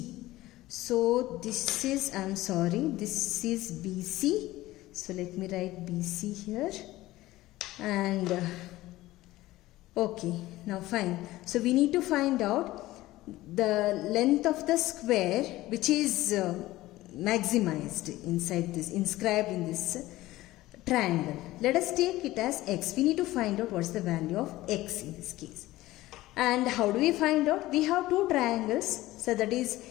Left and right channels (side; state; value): right; quieter; 17.2 dB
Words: So this is, this is BC. So let me write BC here. And okay, now fine. So we need to find out the length of the square which is maximized inside this, inscribed in this triangle. Let us take it as x. We need to find out what is the value of x in this case. And how do we find out? We have two triangles. So that is